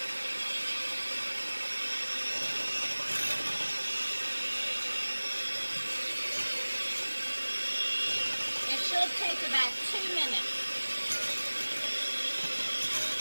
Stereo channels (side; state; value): both; inverted; correlation -1.00